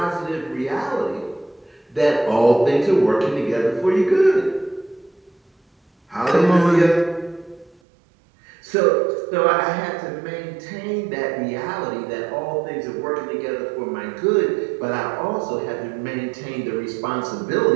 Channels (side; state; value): left; drops out; at 7.8 s